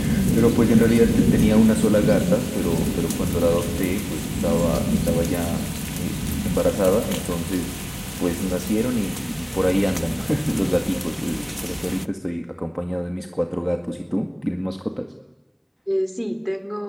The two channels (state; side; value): identical; both; correlation 1.00